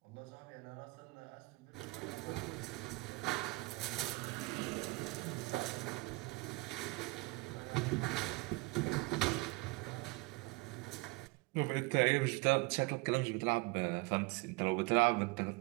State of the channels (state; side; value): quieter; left; 24.1 dB